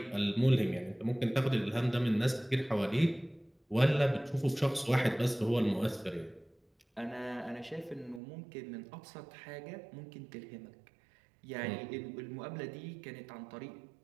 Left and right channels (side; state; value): left; drops out; at 8.2 s